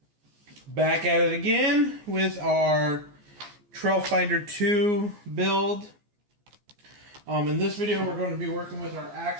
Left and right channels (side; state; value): left; late; 14 ms